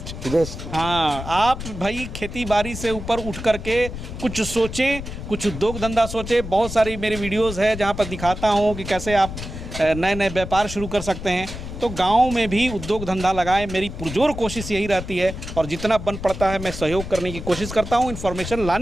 हाँ, आप भाई खेती बाड़ी से ऊपर उठ करके कुछ सोचें, कुछ उद्योग धंधा सोचें। बहुत सारी मेरी वीडियोस है जहाँ पर दिखाता हूँ कि कैसे आप नए नए व्यापार शुरू कर सकते हैं। तो गांव में भी उद्योग धंधा लगाएं, मेरी पुरजोर कोशिश यही रहती है, और जितना बन पड़ता है मैं सहयोग करने की कोशिश करता हूं, इन्फॉर्मेशन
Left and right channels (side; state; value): left; noise; rumble, 9 dB below the sound